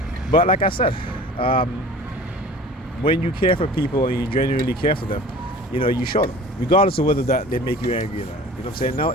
But like I said, when you care for people and you genuinely care for them, you show them. Regardless of whether they make you angry or not. You know what I'm saying? No,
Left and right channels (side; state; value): both; normal; correlation 0.43